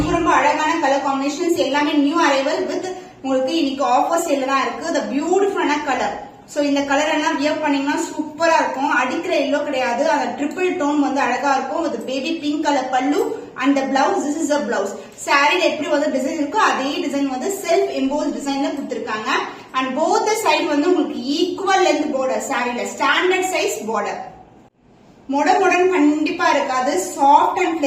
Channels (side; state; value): both; identical; correlation 1.00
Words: ரொம்ப அழகான கலர் காம்பினேஷன்ஸ், எல்லாமே நியூ அரைவல் வித் உங்களுக்கு இன்னைக்கு ஆஃபர் சேல்ல தான் இருக்கு. the beautiful colour. சோ இந்த கலர் எல்லாம் வியர் பண்ணீங்கன்னா சூப்பரா இருக்கும். அடிக்கிற எல்லோ கிடையாது. அந்த ட்ரிபிள் டோன் வந்து அழகா இருக்கும் with பேபி பிங்க் கலர் பல்லு and the blouse. this is a blouse. சாரில எப்படி வந்து டிசைன் இருக்கோ அதே டிசைன் வந்து செல்ஃப் எம்போஸ் டிசைன்ல கொடுத்திருக்காங்க. and both the side வந்து உங்களுக்கு ஈக்குவல் லென்த் border. சாரில ஸ்டாண்டர்ட் சைஸ் border. மொடமொடன் கண்டிப்பா இருக்காது. Soft and